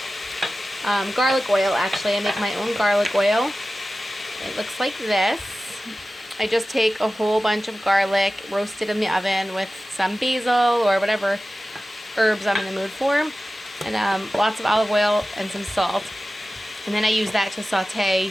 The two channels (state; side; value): normal; both; correlation 0.95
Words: garlic oil actually. I make my own garlic oil. It looks like this. I just take a whole bunch of garlic, roast it in the oven with some basil or whatever herbs I'm in the mood for, and lots of olive oil and some salt. And then I use that to